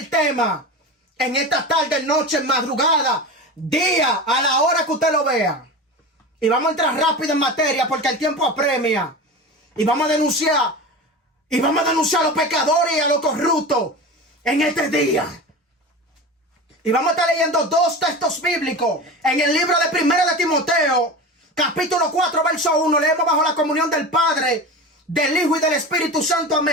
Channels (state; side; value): normal; both; correlation 0.29